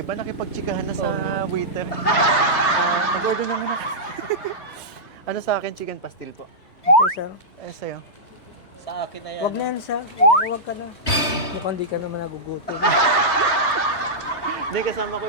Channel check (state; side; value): late; right; 3.2 ms